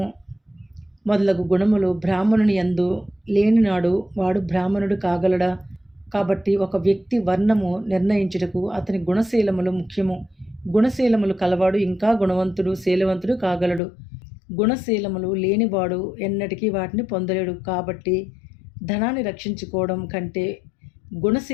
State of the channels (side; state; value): right; drops out; at 13.8 s